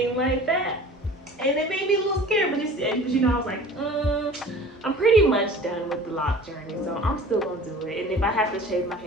like that. And it made me a little scared, but you know, I was like, I'm pretty much done with the lock journey, so I'm still gonna do it. And if I have to shave my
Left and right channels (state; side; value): normal; both; correlation 0.43